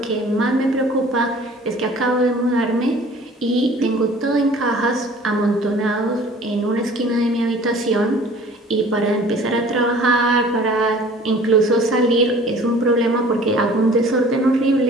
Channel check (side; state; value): both; normal; correlation 0.49